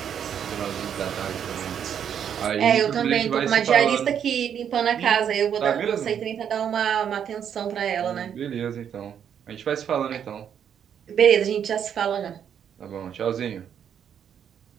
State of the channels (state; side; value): quieter; left; 8.5 dB